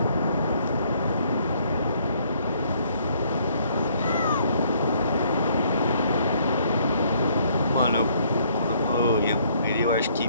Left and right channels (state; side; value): inverted; both; correlation -0.65